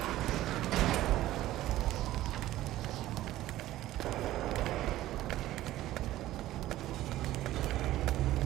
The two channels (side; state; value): left; quieter; 15.0 dB